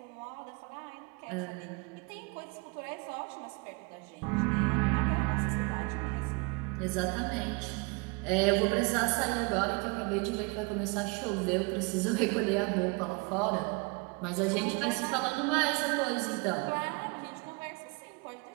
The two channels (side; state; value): left; quieter; 29.5 dB